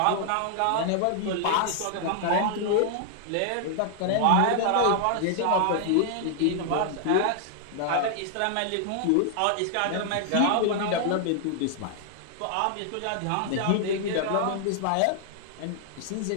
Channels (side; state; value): both; different; correlation -0.01